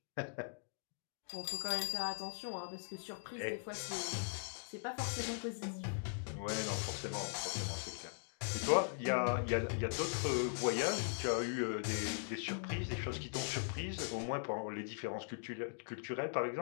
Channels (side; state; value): right; silent; digital silence